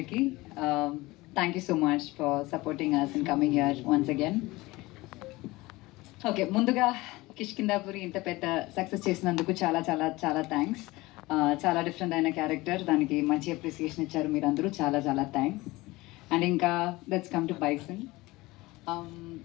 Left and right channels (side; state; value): right; quieter; 20.7 dB